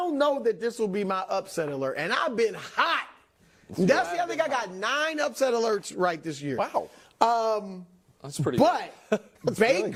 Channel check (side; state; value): both; identical; correlation 1.00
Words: know that this will be my upset alert, and I've been hot. That's the other thing. I got 9 upset alerts right this year. Wow. That's pretty good. But